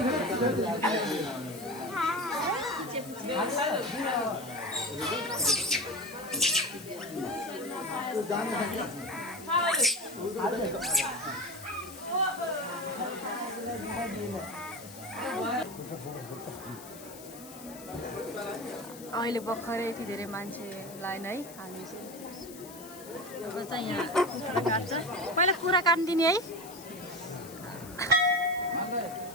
अहिले भर्खरै यति धेरै मान्छे लाइन है। हामी चाहिँ यहाँ कुखुरा काट्छ। पहिला कुखुरा काट्दिने है।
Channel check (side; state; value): left; noise; hiss, 16 dB below the sound